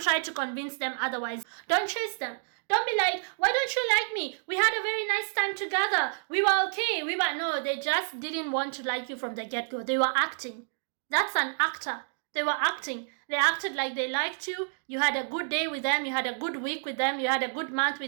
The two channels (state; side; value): silent; left; digital silence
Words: try to convince them otherwise. Don't chase them. Don't be like, why don't you like me? We had a very nice time together. We were okay. No, they just didn't want to like you from the get-go. They were acting. That's an actor. They were acting. They acted like they liked you. You had a good day with them. You had a good week with them. You had a good month